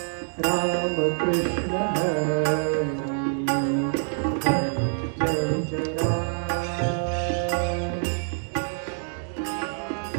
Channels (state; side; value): silent; left; digital silence